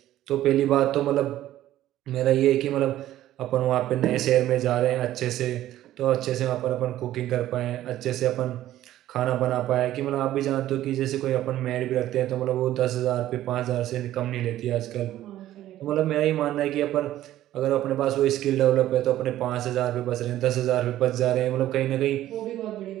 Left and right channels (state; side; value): quieter; left; 13.6 dB